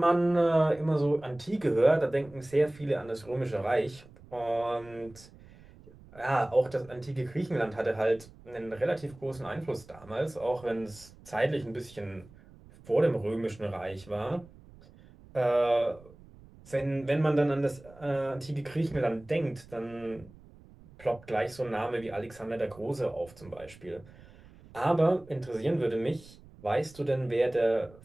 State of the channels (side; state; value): right; noise; rumble, 22 dB below the sound